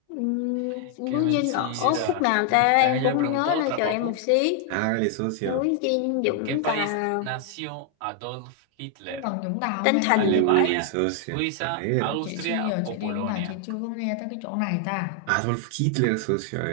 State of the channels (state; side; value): different; both; correlation 0.00